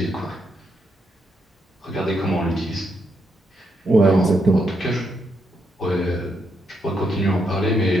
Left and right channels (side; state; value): both; normal; correlation 0.79